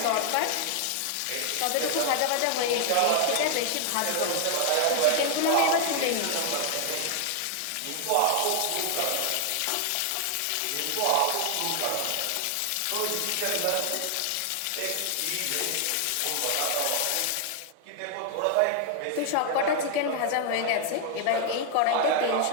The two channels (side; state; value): both; different; correlation 0.00